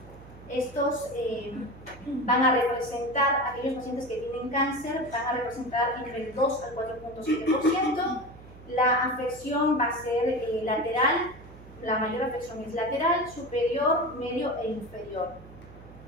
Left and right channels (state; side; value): noise; right; hum, 19 dB below the sound